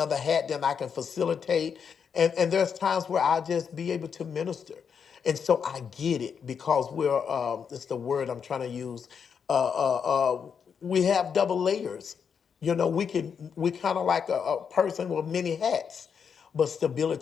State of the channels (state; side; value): quieter; right; 6.8 dB